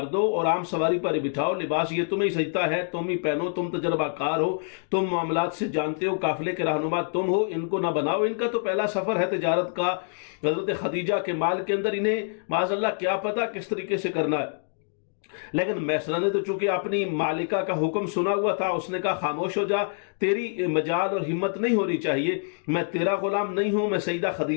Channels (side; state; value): right; silent; digital silence